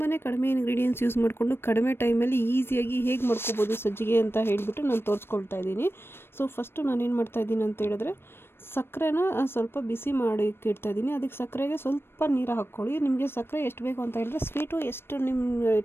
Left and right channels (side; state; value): right; late; 0.11 ms